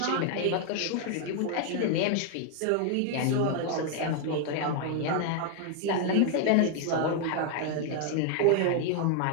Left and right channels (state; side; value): different; both; correlation 0.00